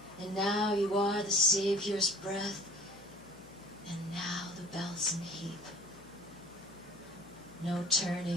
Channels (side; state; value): left; noise; hum, 21 dB below the sound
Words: And now you are the Savior's breath, and now the Belsen heap. No